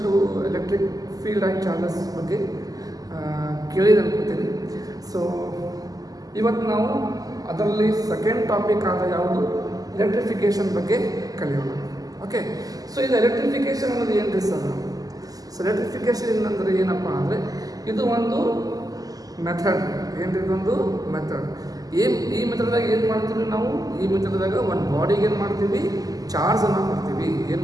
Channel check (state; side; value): late; left; 0.17 ms